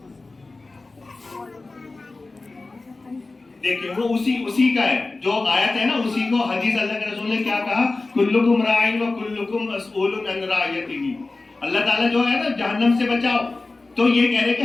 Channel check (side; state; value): right; quieter; 3.4 dB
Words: دیکھیں، وہ اسی کا ہے جو آیت ہے نا، اسی کو حدیث اللہ کے رسول نے کیا کہا، کلکم راعٍ و کلکم مسئول عن رعیتہ. اللہ تعالیٰ جو ہے نا جہنم سے بچاؤ، تو یہ کہہ رہے کہ